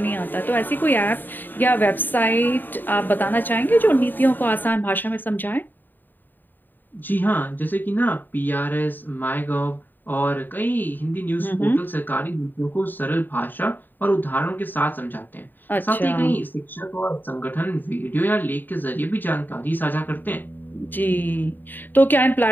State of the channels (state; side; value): late; right; 0.091 ms